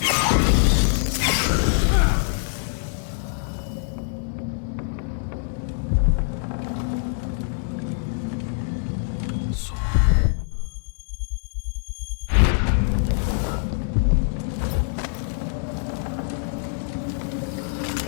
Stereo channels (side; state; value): right; silent; 60 dB below the other